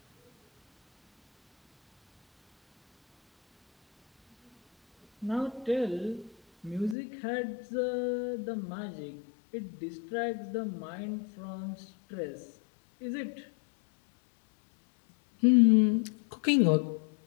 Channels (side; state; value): right; drops out; at 7.0 s